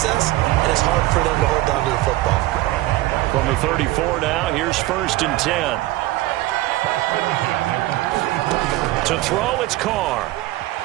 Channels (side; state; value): left; quieter; 17.5 dB